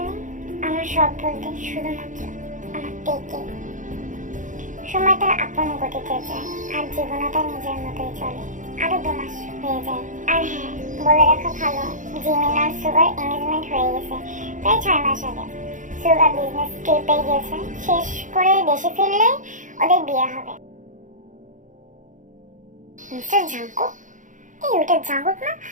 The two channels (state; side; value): late; left; 0.37 ms